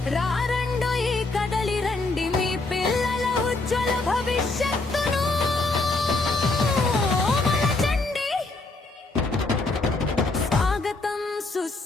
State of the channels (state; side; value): quieter; right; 3.3 dB